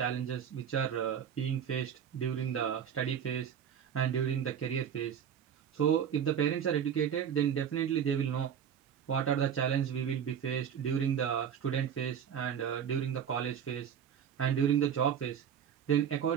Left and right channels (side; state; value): left; quieter; 8.4 dB